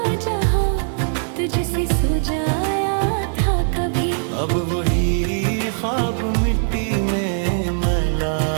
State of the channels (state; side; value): silent; left; 65 dB below the other